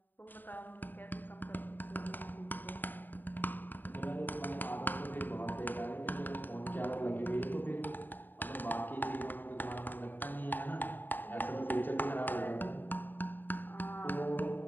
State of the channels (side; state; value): right; late; 0.090 ms